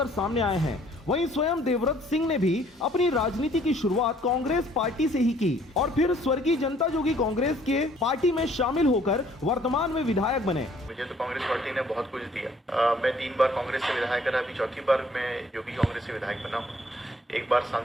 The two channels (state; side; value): normal; both; correlation 0.60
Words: सामने आए हैं। वहीं स्वयं देवव्रत सिंह ने भी अपनी राजनीति की शुरुआत कांग्रेस पार्टी से ही की और फिर स्वर्गीय जनता जोगी कांग्रेस के पार्टी में शामिल होकर वर्तमान में विधायक बने। मुझे तो कांग्रेस पार्टी ने बहुत कुछ दिया। मैं 3 बार कांग्रेस से विधायक रहा, अभी चौथी बार मैं जोगी कांग्रेस से विधायक बना हूँ। 1 बार